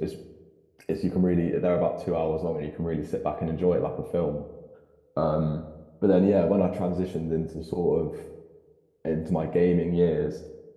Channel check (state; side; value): identical; both; correlation 1.00